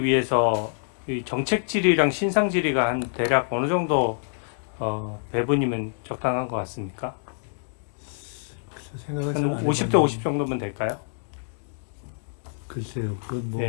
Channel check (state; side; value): silent; right; 61 dB below the other